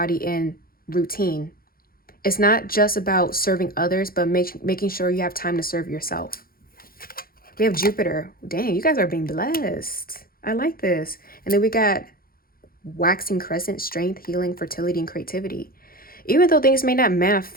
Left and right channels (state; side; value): late; right; 0.43 ms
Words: and routine. It's not just about serving others, but making sure you have time to serve yourself. We have Jupiter. Dang, you guys are being blessed. I like this. And then we got waxing crescent, strength, healing, fertility, and creativity. Even though things may not